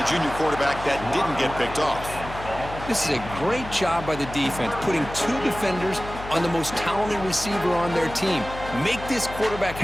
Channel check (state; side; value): noise; left; hum, 12 dB below the sound